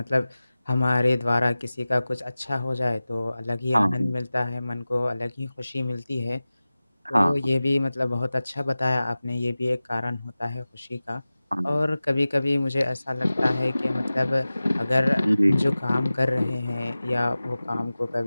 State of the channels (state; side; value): inverted; both; correlation -0.97